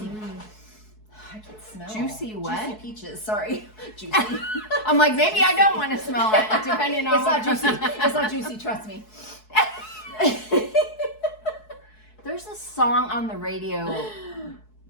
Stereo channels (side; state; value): right; late; 4.7 ms